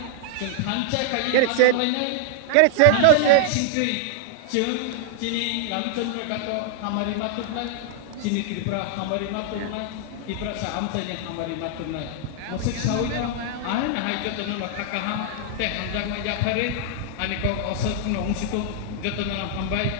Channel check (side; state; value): both; different; correlation 0.00